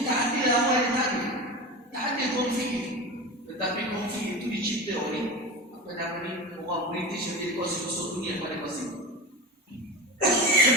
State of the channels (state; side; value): normal; both; correlation 0.26